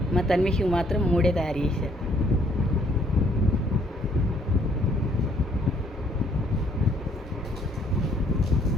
మా తన్విషికి మాత్రం 3 తయారు చేశాను.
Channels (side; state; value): both; normal; correlation 0.65